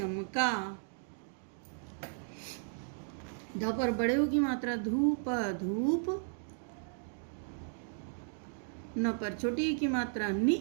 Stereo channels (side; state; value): left; silent; digital silence